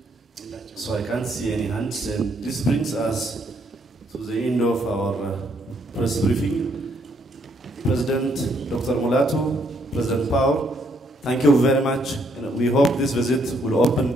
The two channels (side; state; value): both; normal; correlation 0.71